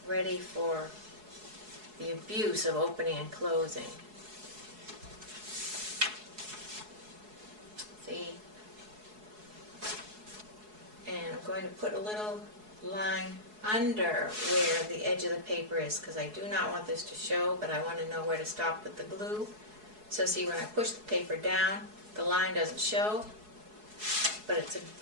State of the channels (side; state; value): left; late; 4.7 ms